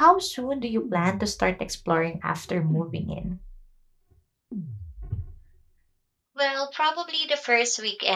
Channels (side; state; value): both; identical; correlation 1.00